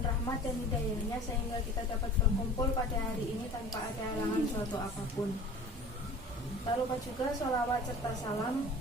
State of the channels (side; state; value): both; normal; correlation 0.41